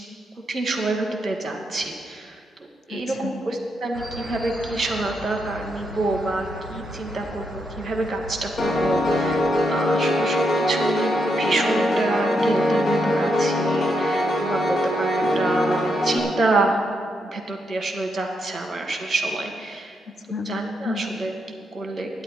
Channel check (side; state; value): both; normal; correlation 0.80